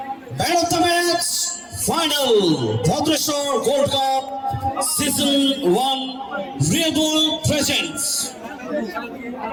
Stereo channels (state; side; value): identical; both; correlation 1.00